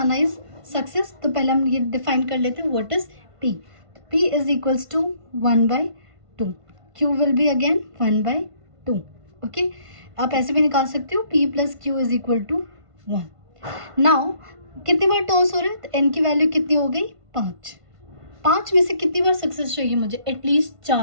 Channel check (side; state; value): left; late; 1.5 ms